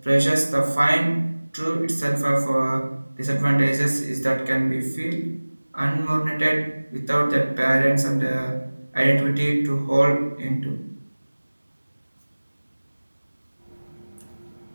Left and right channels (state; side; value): inverted; both; correlation -1.00